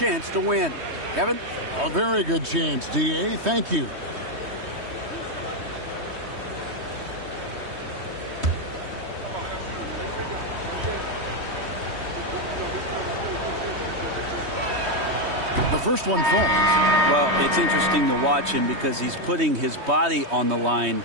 to win. Kevin? A very good chance, D.A. Thank you. The first one falls. Well, it's interesting to watch him because he's putting his body on the line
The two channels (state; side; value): late; left; 3.2 ms